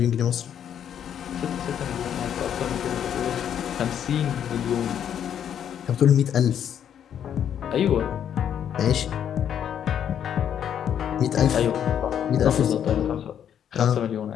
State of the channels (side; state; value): right; quieter; 9.2 dB